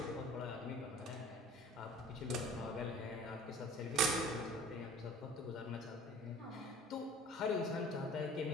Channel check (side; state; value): both; normal; correlation 0.46